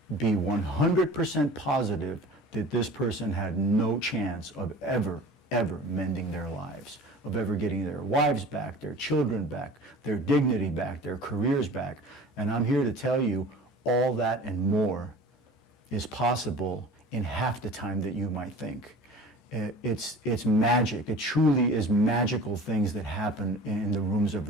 be 100% positive that this person had no chance of ever mending their lives, of ever getting their wives back, their children back, their dignity back, their careers back. And I'm here to tell you all that and more is possible in half the time that you might think. It's magic. It truly is magical things that happen in the rooms of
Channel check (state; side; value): normal; both; correlation 0.41